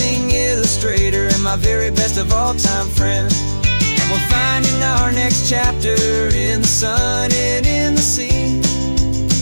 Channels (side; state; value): both; inverted; correlation -1.00